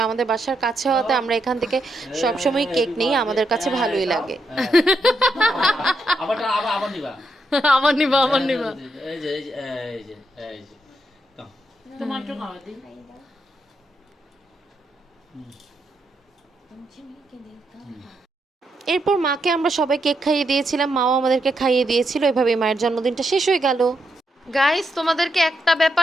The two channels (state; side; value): normal; both; correlation 0.81